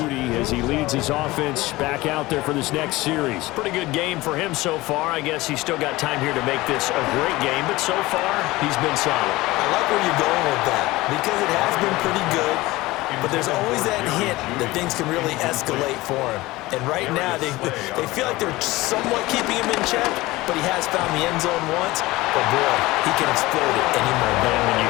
as he leads his offense back out there for this next series. Pretty good game for him so far. I guess he's still got time here to make this a great game, but so far he's been solid. I like where you're going with that because it has been pretty good, but there's always that hint that things can really escalate for him. And right now they feel like they're somewhat keeping him in check, but he has found the end zone once. But boy, he can explode it any moment. And when you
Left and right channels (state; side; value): quieter; right; 19.6 dB